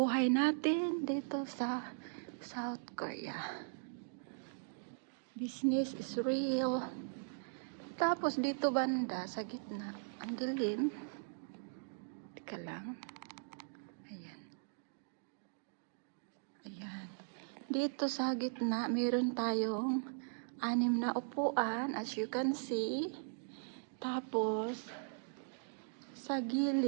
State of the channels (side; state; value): left; silent; digital silence